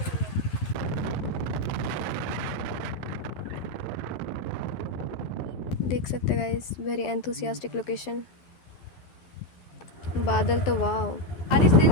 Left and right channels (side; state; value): right; late; 12 ms